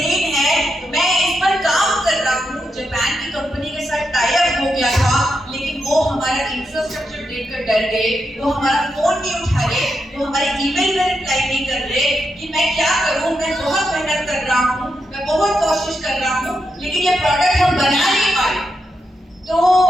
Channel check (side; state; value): both; normal; correlation 0.85